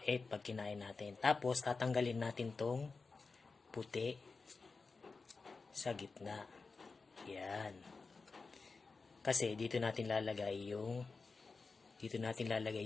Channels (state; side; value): quieter; right; 4.3 dB